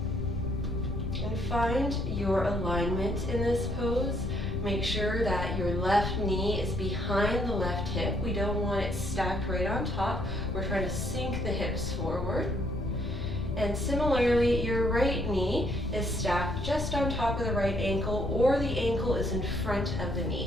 And find your alignment in this pose. Make sure that your left knee is behind the left hip. We don't want it stacked right on top. We're trying to sink the hips forward. And similarly, your right knee is stacked just on top of the right ankle, or the ankle is in front of the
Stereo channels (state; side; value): noise; left; rumble, 7 dB below the sound